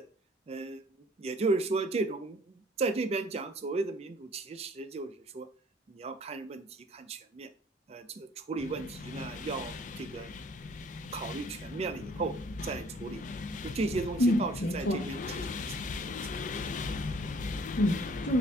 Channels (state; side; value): normal; both; correlation 0.56